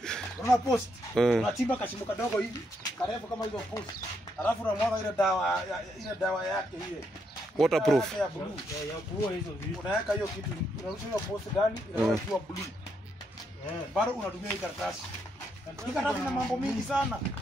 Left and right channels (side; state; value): both; normal; correlation 0.78